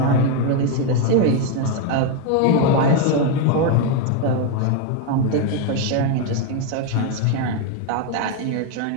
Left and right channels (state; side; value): different; both; correlation 0.01